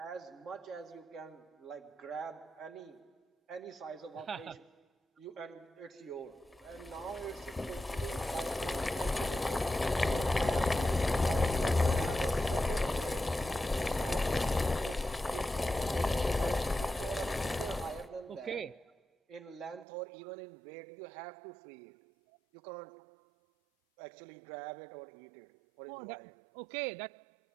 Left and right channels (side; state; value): left; drops out; at 19.9 s